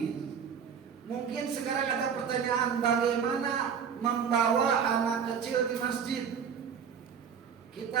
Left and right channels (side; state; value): left; quieter; 7.2 dB